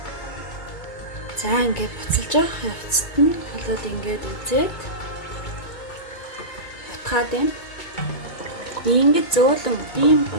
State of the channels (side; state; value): right; late; 2.2 ms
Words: За ингээд буцалж явах явцад нь болоод ингээд үзээд утгаад байна. Ингээд